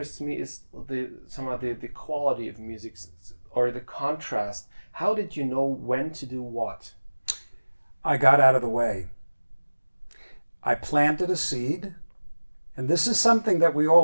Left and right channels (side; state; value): both; inverted; correlation -1.00